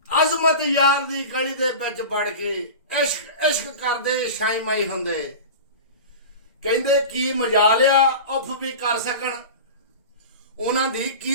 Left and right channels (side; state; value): both; inverted; correlation -0.31